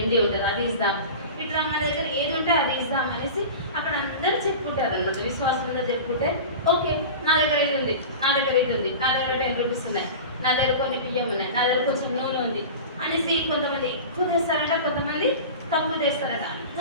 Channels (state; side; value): inverted; both; correlation -0.32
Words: ఉంటుంది అది ఇస్తాం, ఇట్లా మన దగ్గర ఏది ఉంటే అది ఇస్తాం అనేసి అక్కడ అందరూ చెప్పుకుంటారు అనమాట. విశ్వాసం అందరూ చెప్పుకుంటే, ఓకే నా దగ్గర ఇది ఉంది, నా దగ్గర ఇది ఉంది, నా దగ్గర 10 rupees ఉన్నాయి, నా దగ్గర కొన్ని బియ్యం ఉన్నాయి, నా దగ్గర కొంచెం నూనె ఉంది అనేసి కొంతమంది ఎక్కువ తెస్తారంట, కొంతమంది తక్కువ తెస్తారంట,